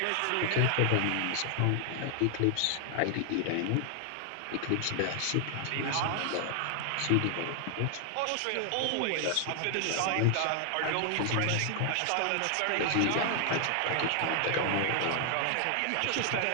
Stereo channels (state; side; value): different; both; correlation 0.00